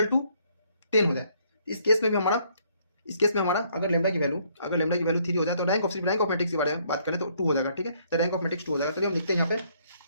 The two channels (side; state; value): both; inverted; correlation -0.67